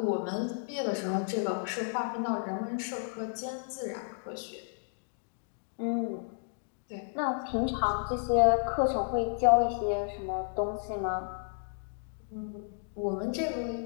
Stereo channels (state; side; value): silent; right; digital silence